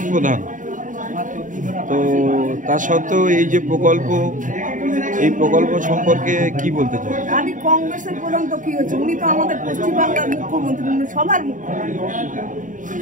প্রধান, তো তা সত্ত্বেও এই যে প্রকল্প, এই প্রকল্প সম্পর্কে কি বলতে চান? আমি কংগ্রেসের প্রধান তো কি হচ্ছে, উনি তো আমাদের পশ্চিমবাংলার মুখ্যমন্ত্রী, উনি সবার মুখ্যমন্ত্রী,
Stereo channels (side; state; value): left; late; 0.38 ms